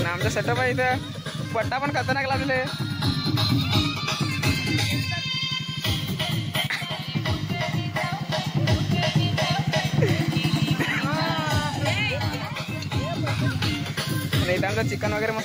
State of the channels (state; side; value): identical; both; correlation 1.00